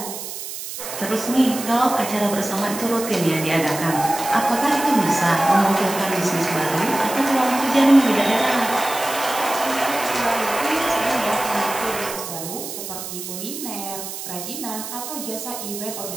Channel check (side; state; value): right; noise; hiss, 8 dB below the sound